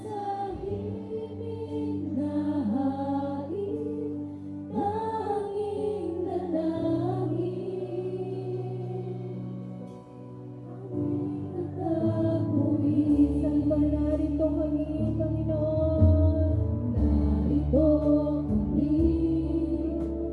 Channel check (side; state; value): both; identical; correlation 1.00